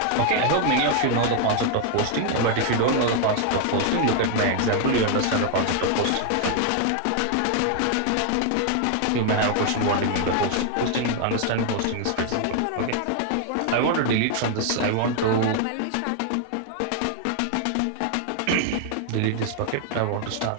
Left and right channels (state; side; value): different; both; correlation 0.00